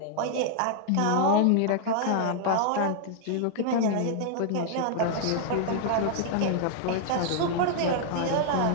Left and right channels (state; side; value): different; both; correlation 0.00